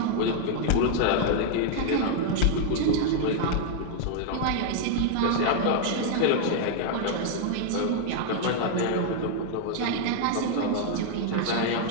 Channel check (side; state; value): both; different; correlation 0.00